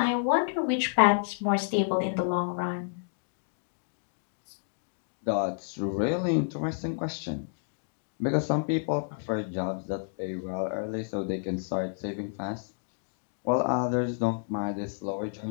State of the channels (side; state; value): right; silent; digital silence